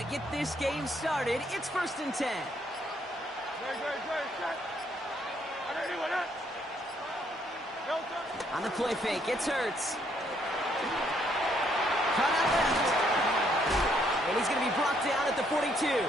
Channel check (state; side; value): normal; both; correlation 0.70